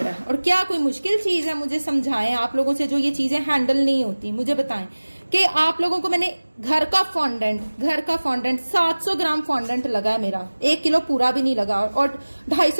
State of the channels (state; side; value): inverted; both; correlation -1.00